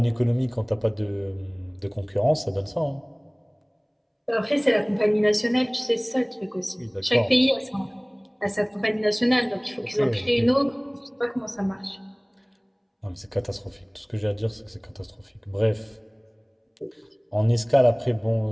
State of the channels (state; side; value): identical; both; correlation 1.00